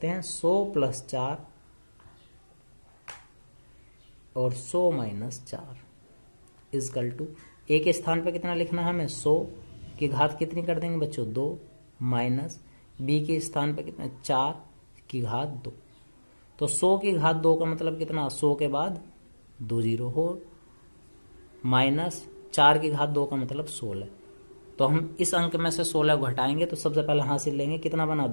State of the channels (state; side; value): inverted; both; correlation -1.00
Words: हैं 100 प्लस 4 और 100 माइनस 4 इजकल टू a के स्थान पर कितना लिखना है हमें 100 की घात कितनी कर देंगे बच्चों 2 माइनस b के स्थान पर कितना 4 की घात 2। तो 100 की घात 2 का मतलब कितना 100 के बाद 2 0 हो माइनस 4 की घात 2 का मतलब 16। तो हम इस अंक में से 16 घटाएंगे तो सबसे पहले हासिल लेंगे कितना बना